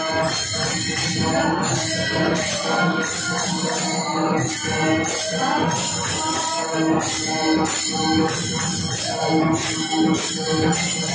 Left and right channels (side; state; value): both; identical; correlation 1.00